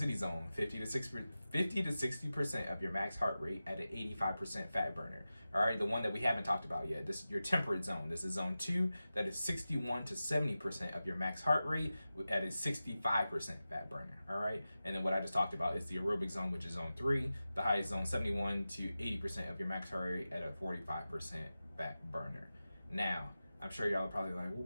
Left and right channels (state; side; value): inverted; both; correlation -0.94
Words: zone, 50 to 60% of your max heart rate at an 85% fat burner. All right, the one that we haven't talked about yet. This is your temperate zone. This is zone 2. That is 61 to 70% of your max heart rate at a 65% fat burner. All right, and then what I just talked about is the aerobic zone, which is zone 3. The highest zone, 71 to 80% of your max heart rate at a 45% fat burner. Now, I'm sure y'all are probably like, well,